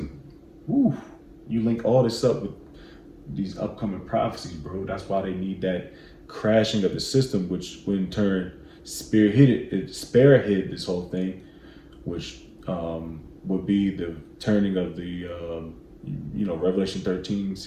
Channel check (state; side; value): identical; both; correlation 1.00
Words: Woo, you link all this up with these upcoming prophecies, bro. That's why they need that crashing of the system, which in turn spearhead this whole thing, which would be the turning of the Revelation